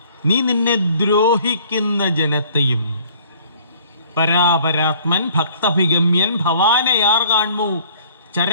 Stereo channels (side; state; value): both; inverted; correlation -0.55